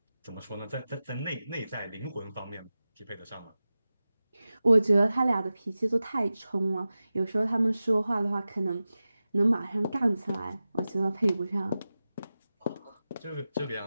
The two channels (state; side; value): inverted; both; correlation -0.95